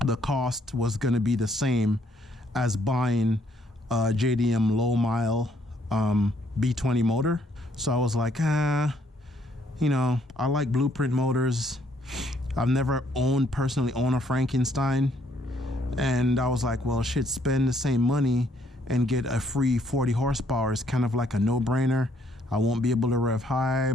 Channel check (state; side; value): normal; both; correlation 0.68